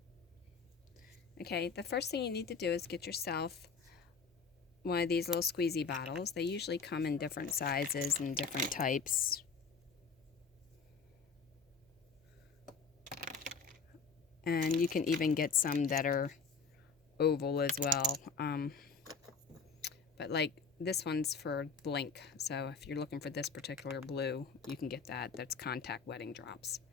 Okay, the first thing you need to do is get yourself one of these little squeezy bottles. They usually come in different sizes and different types. And you can even get some that are oval as well. But like this one's for Blink, so if you're looking for this particular blue, you can get that. That's contact wedding drops.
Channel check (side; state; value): right; quieter; 5.0 dB